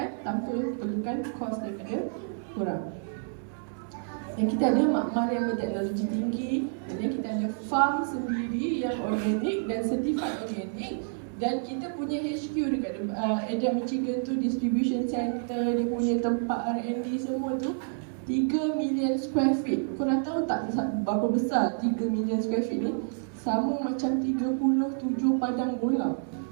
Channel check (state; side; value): silent; left; digital silence